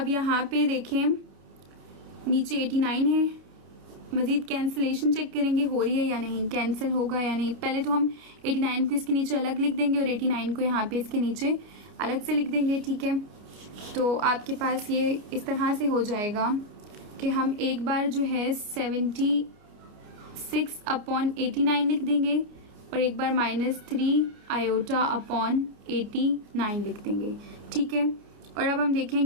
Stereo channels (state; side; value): late; left; 29 ms